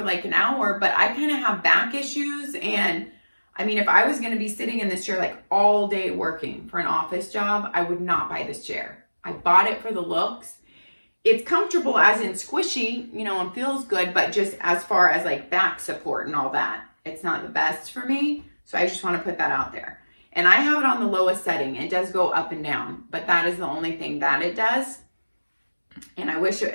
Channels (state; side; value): inverted; both; correlation -1.00